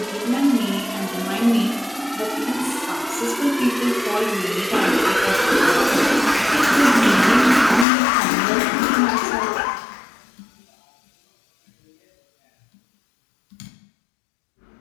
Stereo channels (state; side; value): drops out; right; at 7.9 s